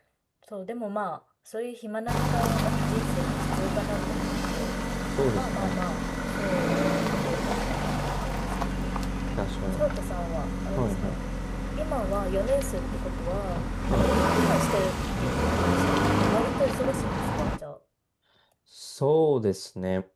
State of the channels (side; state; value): both; identical; correlation 1.00